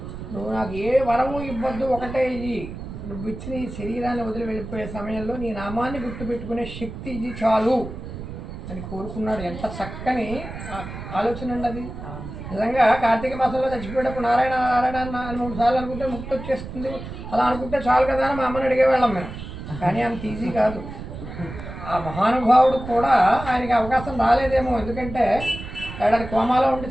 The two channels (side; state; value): right; noise; rumble, 10 dB below the sound